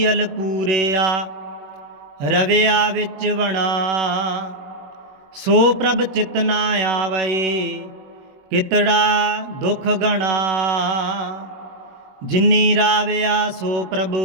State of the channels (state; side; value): late; left; 21 ms